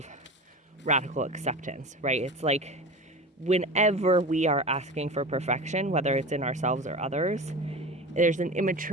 radical acceptance, right? It's like whenever we are asking for perfection, whether it's in ourselves or others, there's an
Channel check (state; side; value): normal; both; correlation 0.31